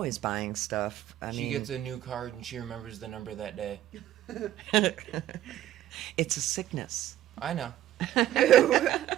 buying stuff. I She mean, gets a new card and she remembers the number that day. it's a sickness. I know.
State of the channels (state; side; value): quieter; left; 12.9 dB